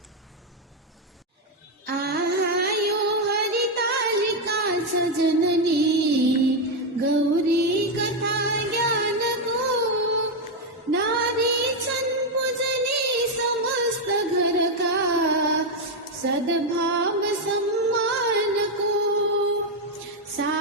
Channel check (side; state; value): both; normal; correlation 0.04